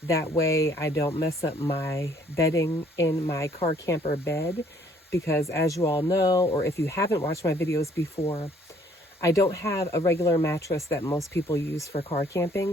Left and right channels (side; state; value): both; normal; correlation 0.62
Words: That way I don't mess up my bedding in my car camper bed, because as you all know, or if you haven't watched my videos before, I don't have a regular mattress that most people use for car